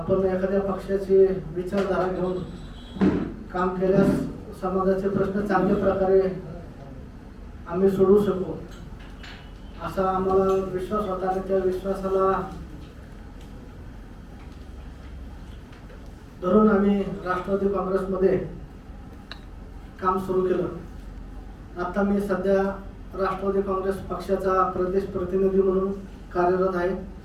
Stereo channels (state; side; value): identical; both; correlation 1.00